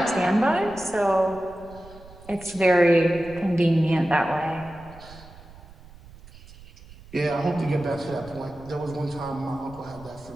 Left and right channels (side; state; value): right; noise; rumble, 20 dB below the sound